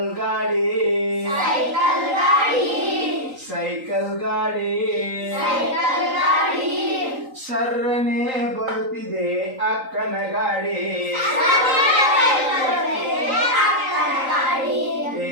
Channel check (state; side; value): late; left; 3.8 ms